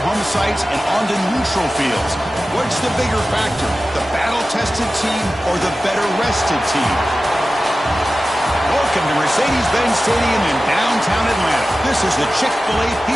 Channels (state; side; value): normal; both; correlation 0.95